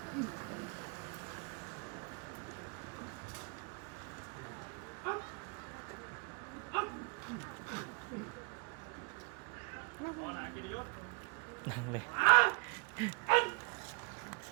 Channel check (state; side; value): quieter; left; 34.4 dB